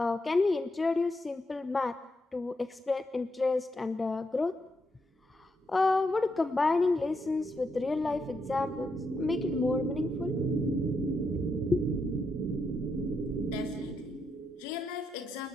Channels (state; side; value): normal; both; correlation 0.82